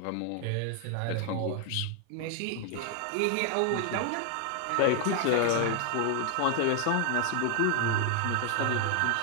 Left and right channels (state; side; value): different; both; correlation 0.00